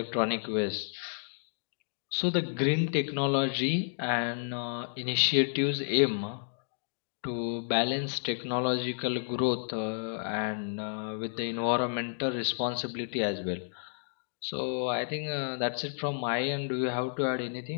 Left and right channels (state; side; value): silent; right; digital silence